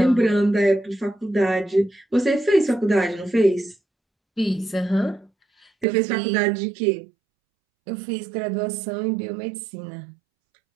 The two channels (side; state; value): left; drops out; at 5.9 s